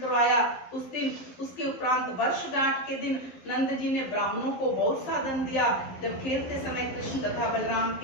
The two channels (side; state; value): right; late; 12 ms